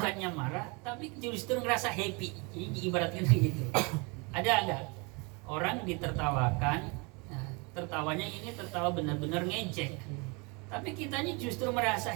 marah, tapi justru ngerasa happy. Jadi diibaratkan begitu. Ada enggak orang ditertawakan, nah, tertawanya ini tertawa benar-benar ngejek, tapi kitanya justru merasa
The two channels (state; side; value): quieter; left; 30.2 dB